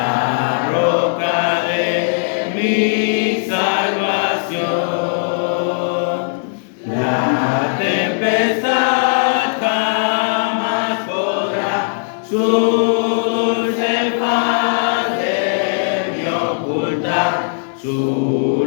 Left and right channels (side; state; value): right; silent; digital silence